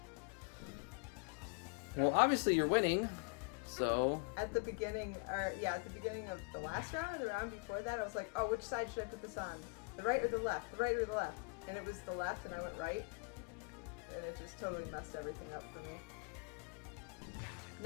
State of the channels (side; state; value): right; quieter; 33.6 dB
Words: Well, obviously you're winning, so... At the beginning of the last round and the round before that, I was like, oh, which side should I put this on? The right or the left? The right or the left? And it was the left, and I went right. And it just totally messed everything up for me.